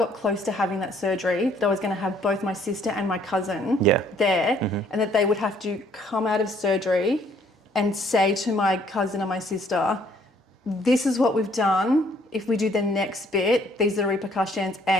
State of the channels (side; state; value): both; normal; correlation 0.63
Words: close to having that surgery, that I was going to have both my sister and my cousin there, and that they would have to come out of surgery and say to my cousin and my sister, this is what we've done. If we do the next bit, these are the repercussions,